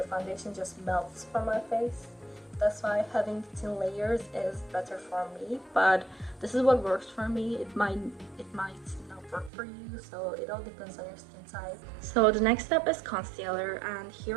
foundation just melts from my face. That's why having thin layers is better for me, but this is what works for me. It might not work for you, so it all depends on your skin type. So the next step is concealer, and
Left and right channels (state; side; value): drops out; left; at 9.5 s